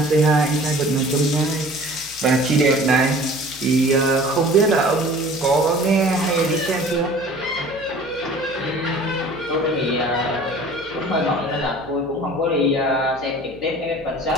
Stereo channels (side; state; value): left; noise; hum, 23 dB below the sound